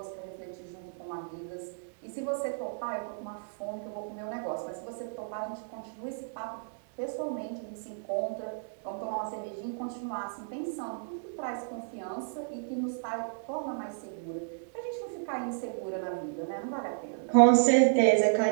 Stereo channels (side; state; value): left; silent; digital silence